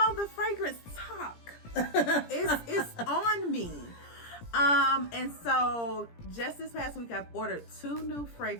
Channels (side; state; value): right; late; 17 ms